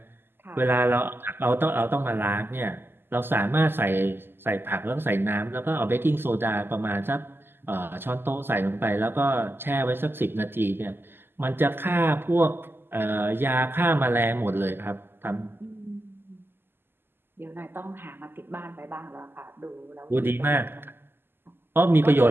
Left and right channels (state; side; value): late; left; 0.10 ms